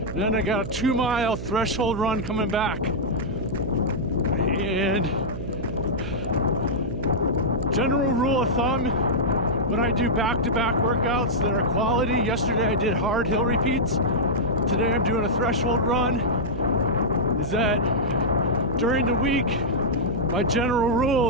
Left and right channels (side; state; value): right; noise; hum, 7 dB below the sound